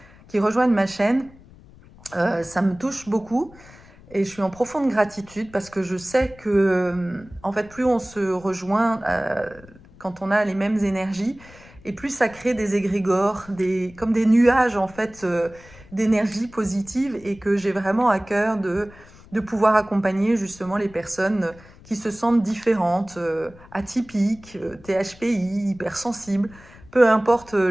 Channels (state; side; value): noise; left; rumble, 23 dB below the sound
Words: qui rejoignent ma chaîne, ça me touche beaucoup. Et je suis en profonde gratitude parce que je sais que, en fait, plus on se rejoint quand on a les mêmes énergies, et plus ça crée des égrégores, comme des nuages, en fait, d'énergie positive, et que j'ai vraiment à cœur de pouvoir accompagner justement les personnes qui se sentent différentes, atypiques, THPI, hypersensibles, peu importe